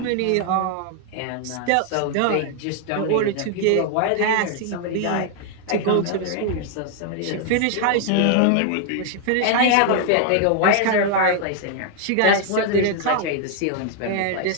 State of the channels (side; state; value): both; different; correlation 0.00